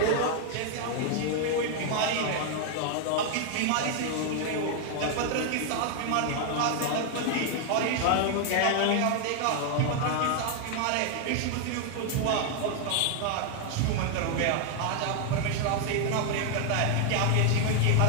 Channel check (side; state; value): both; different; correlation 0.00